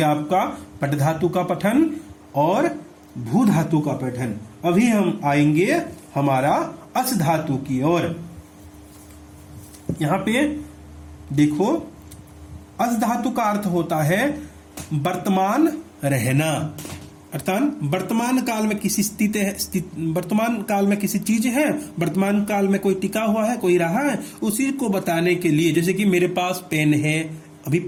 आपका पट धातु का पठन और भू धातु का पठन। अभी हम आएंगे हमारा अस धातु की ओर। यहां पे देखो, अस धातु का अर्थ होता है वर्तमान रहना, अर्थात वर्तमान काल में किसी वर्तमान काल में किसी चीज है, वर्तमान काल में कोई टिका हुआ है, कोई रहा है, उसी को बताने के लिए। जैसे कि मेरे पास पेन है, अभी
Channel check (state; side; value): identical; both; correlation 1.00